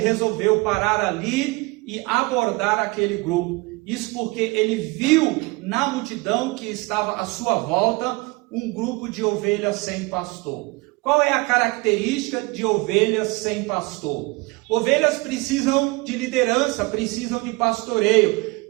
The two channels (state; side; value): quieter; left; 24.8 dB